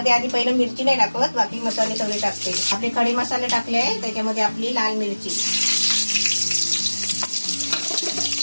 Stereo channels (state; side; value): inverted; both; correlation -1.00